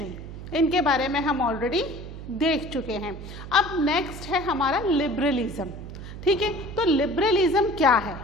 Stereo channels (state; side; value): noise; right; hum, 11 dB below the sound